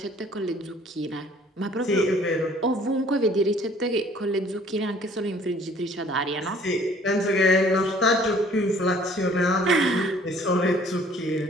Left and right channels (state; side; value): normal; both; correlation 0.55